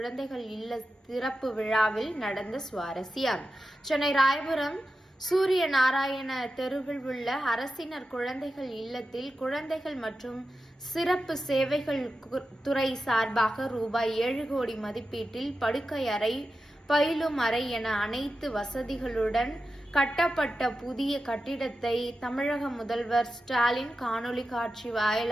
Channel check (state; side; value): normal; both; correlation 0.91